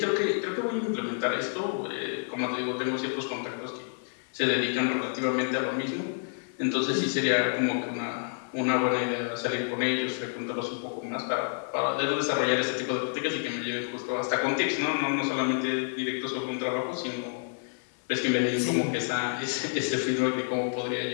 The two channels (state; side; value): silent; right; digital silence